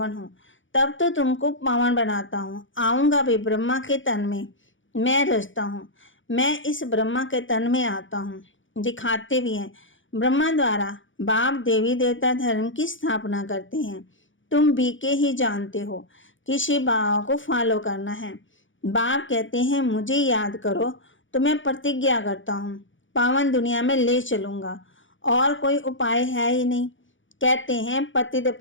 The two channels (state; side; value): late; right; 0.56 ms